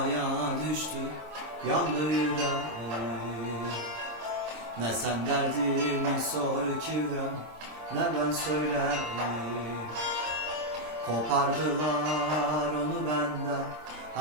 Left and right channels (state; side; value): late; left; 26 ms